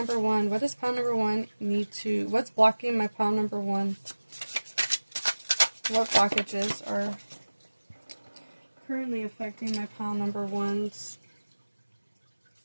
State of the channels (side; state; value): both; inverted; correlation -1.00